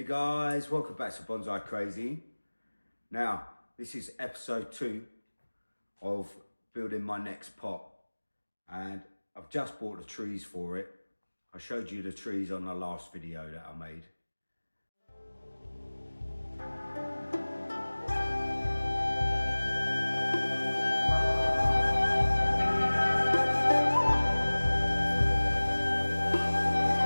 guys, welcome back to Bonsai Crazy. Now, this is episode 2 of building my next pot, and I've just bought the trees for it. I showed you the trees on the last video that I made.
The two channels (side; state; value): both; inverted; correlation -1.00